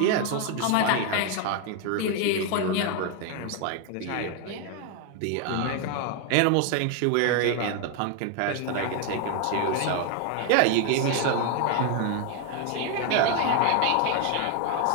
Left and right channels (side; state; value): both; different; correlation 0.01